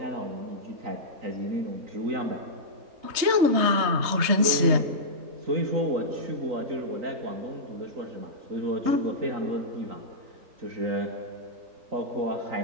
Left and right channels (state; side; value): late; left; 3.3 ms